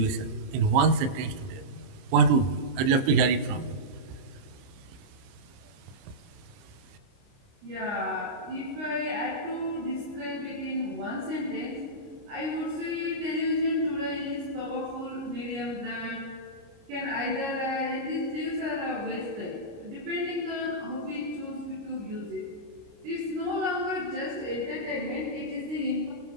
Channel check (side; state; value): left; late; 30 ms